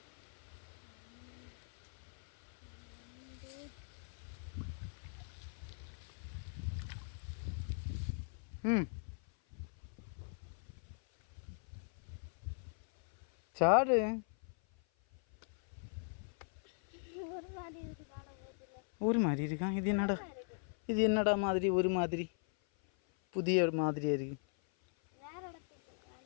சாடு. ஒரு மாதிரி இருக்கான். இது என்னடா மாதிரி ஒரு மாதிரி புதிய மாதிரியா இருக்கு.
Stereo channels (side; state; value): right; silent; 51 dB below the other